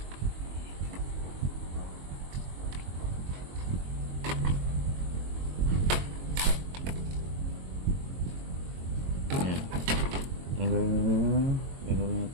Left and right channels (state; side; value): late; left; 22 ms